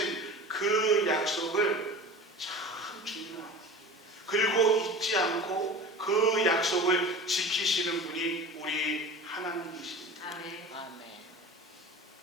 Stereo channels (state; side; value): normal; both; correlation 0.35